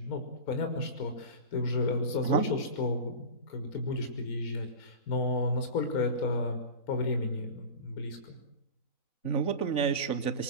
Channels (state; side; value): late; right; 3.5 ms